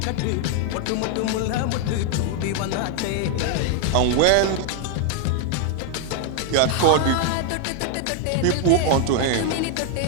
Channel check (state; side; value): different; both; correlation 0.00